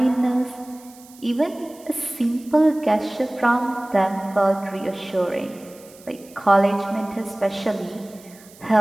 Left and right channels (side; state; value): right; noise; hiss, 23 dB below the sound